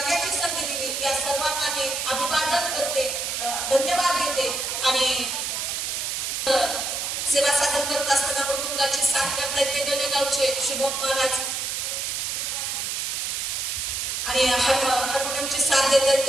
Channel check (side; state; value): right; noise; hiss, 2 dB below the sound